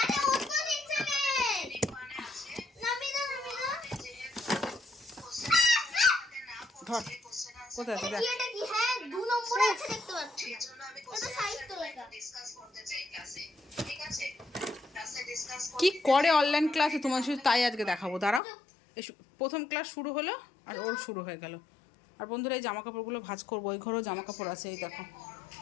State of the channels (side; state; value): right; drops out; at 18.4 s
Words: ওটা নিচে নেই। নামি দাও। ধর কোথায় আছে দেখ। এটা কি? হ্যাঁ 2 নম্বরে আছে, দেখতে পাচ্ছি। এটা সাহিত্য লেখা। কি করে অনলাইন ক্লাসে তোমার শুধু তাই আজকে দেখাবো, দাঁড়াও। প্রথম ক্লাস শুরু হলো আর ওর শুরু হয়ে গেল। আর বন্ধুরা এই জামা কাপড়গুলো ভাঁজ করবো, ওই ঘরেও জামা কাপড় আছে, এই